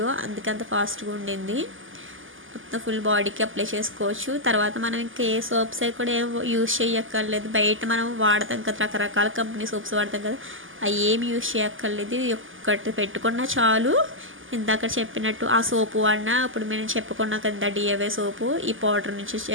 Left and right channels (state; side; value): late; left; 0.58 ms